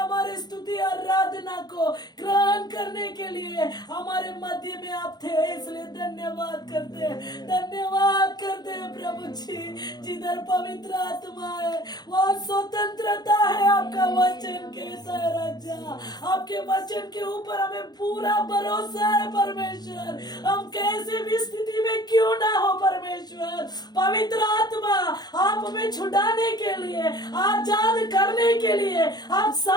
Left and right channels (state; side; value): late; right; 0.20 ms